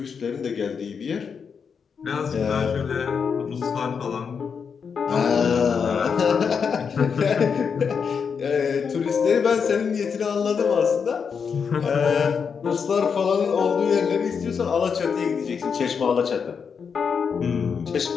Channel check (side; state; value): right; quieter; 6.3 dB